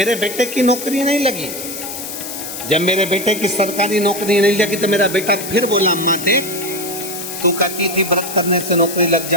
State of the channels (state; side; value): noise; left; hiss, 8 dB below the sound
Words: बेटे की नौकरी नहीं लगी। जब मेरे बेटे की सरकारी नौकरी नहीं लगी तो मेरा बेटा फिर बोला, अम्मा देख, तू कहती थी व्रत करने से नौकरी लग